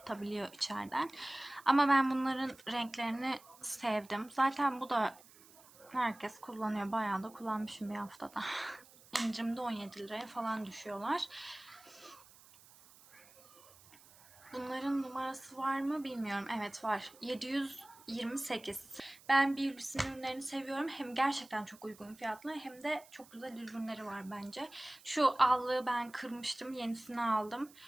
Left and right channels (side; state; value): right; noise; hiss, 23 dB below the sound